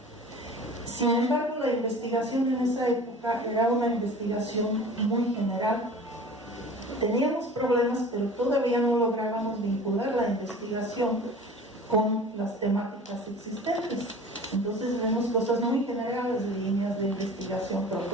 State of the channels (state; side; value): normal; both; correlation 0.41